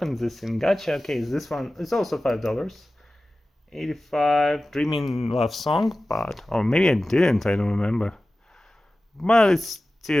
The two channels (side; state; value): both; normal; correlation 0.96